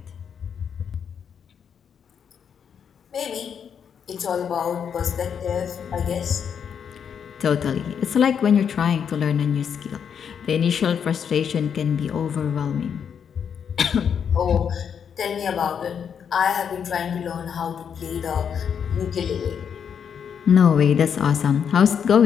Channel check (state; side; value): quieter; right; 7.5 dB